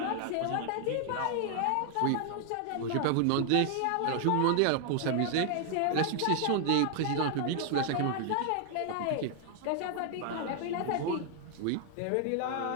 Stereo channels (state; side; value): different; both; correlation 0.00